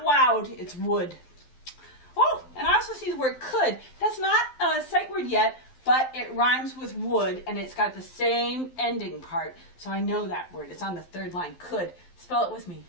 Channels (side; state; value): right; late; 12 ms